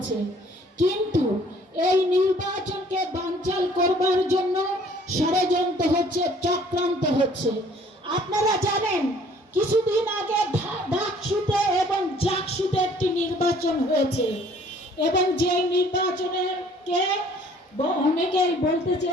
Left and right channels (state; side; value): normal; both; correlation 0.57